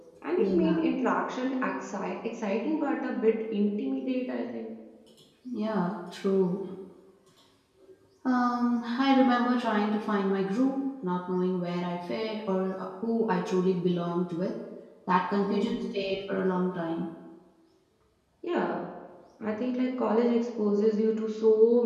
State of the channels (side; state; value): both; identical; correlation 1.00